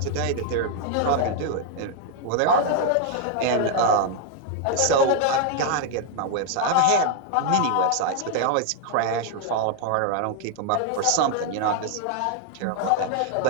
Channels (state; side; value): different; both; correlation 0.00